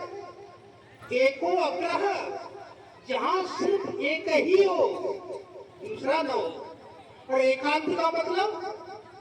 एको अग्रह, जहां सिर्फ एक ही हो, दूसरा न हो। और एकांत का मतलब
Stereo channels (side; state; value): both; identical; correlation 1.00